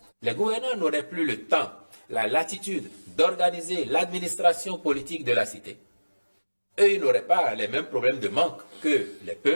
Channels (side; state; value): both; inverted; correlation -1.00